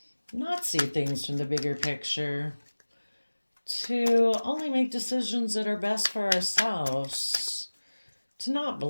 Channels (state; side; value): inverted; both; correlation -1.00